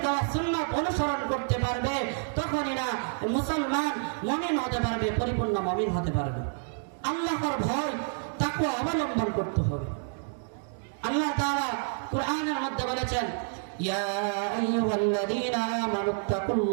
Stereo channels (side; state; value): left; silent; digital silence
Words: দেওয়া সুন্নাত অনুসরণ করতে পারবে, তখনই না মুসলমান মুমিন হতে পারবে, পরিপূর্ণ মুমিন হতে পারবে। আল্লাহর ভয় তাকওয়া অবলম্বন করতে হবে। আল্লাহ তাআলা কুরআনের মধ্যে বলেছেন, ইয়া আইয়ুহাল্লাযীনা